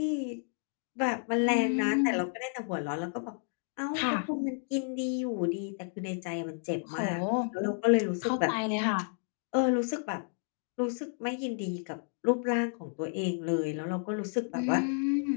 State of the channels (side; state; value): right; silent; 57 dB below the other